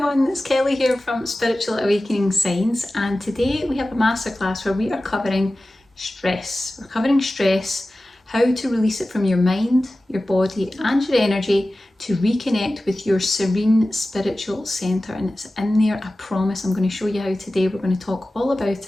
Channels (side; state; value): both; normal; correlation 0.96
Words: it's Kelly here from Spiritual Awakening Signs, and today we have a masterclass where we are covering stress. We're covering stress, how to release it from your mind, your body and your energy to reconnect with your serene spiritual centre, and it's in there, I promise. I'm going to show you how today. We're going to talk all